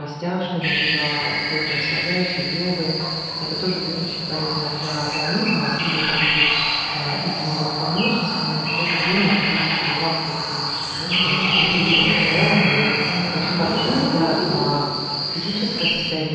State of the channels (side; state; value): both; identical; correlation 1.00